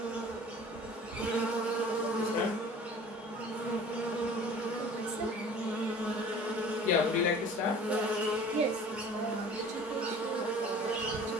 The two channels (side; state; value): both; normal; correlation 0.45